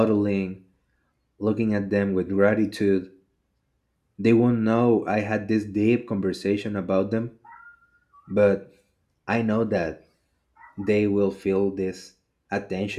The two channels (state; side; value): identical; both; correlation 1.00